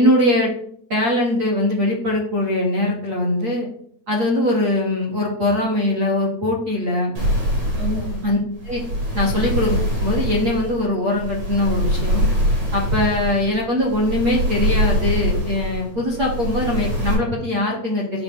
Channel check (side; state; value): left; late; 8.5 ms